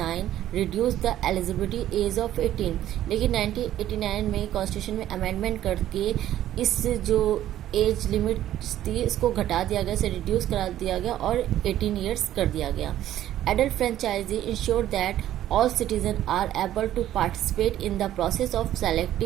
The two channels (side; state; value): left; quieter; 12.6 dB